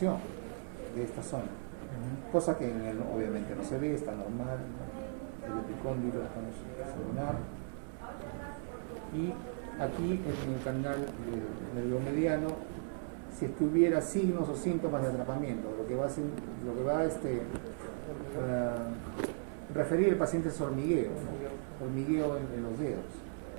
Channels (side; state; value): left; silent; 53 dB below the other